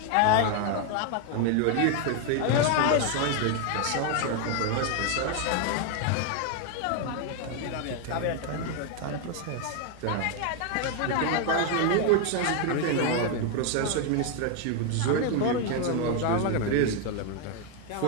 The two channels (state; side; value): different; both; correlation 0.01